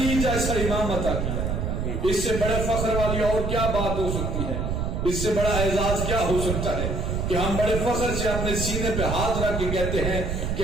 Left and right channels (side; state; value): right; noise; rumble, 1 dB below the sound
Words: جیسا امام عطا کیا۔ اس سے بڑے فخر والی اور کیا بات ہو سکتی ہے؟ اس سے بڑا اعزاز کیا ہو سکتا ہے کہ ہم بڑے فخر سے اپنے سینے پہ ہاتھ رکھ کے کہتے ہیں کہ